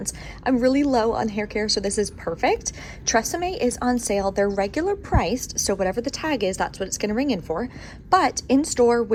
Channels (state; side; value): identical; both; correlation 1.00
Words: I'm really low on hair care, so this is perfect. Tresemme is on sale. They're regular priced, so whatever the tag is, that's what it's going to ring in for. But in store,